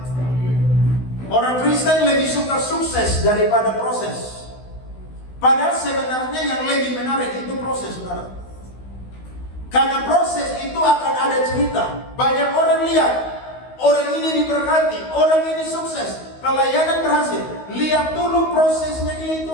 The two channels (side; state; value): right; late; 16 ms